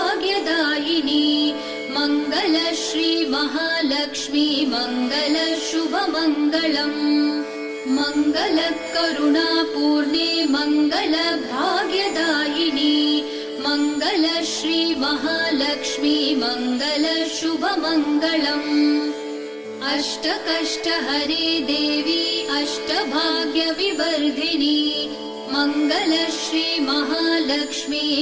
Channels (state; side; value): identical; both; correlation 1.00